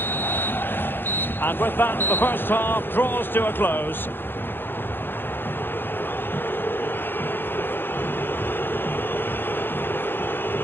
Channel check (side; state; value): right; late; 0.10 ms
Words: And with that, the first half draws to a close.